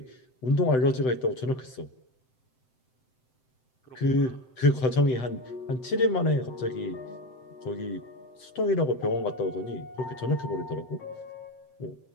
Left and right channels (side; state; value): right; late; 7.7 ms